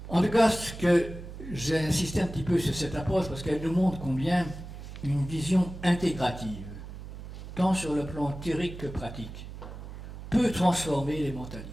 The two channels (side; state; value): right; noise; hum, 12 dB below the sound